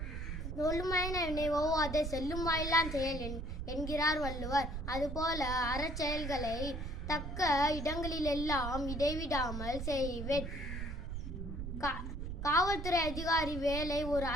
சொல்லுமாயின நினைவோவாதே செல்லும் வாயிலான் செயல் என்கிறார் வள்ளுவர். அதுபோல அறச்செயல்களை தக்க இடங்களிலெல்லாம் இடைவிடாமல் செய்வேன். காவல்துறை அதிகாரி வேலை ஒரு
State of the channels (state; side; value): noise; right; rumble, 5 dB below the sound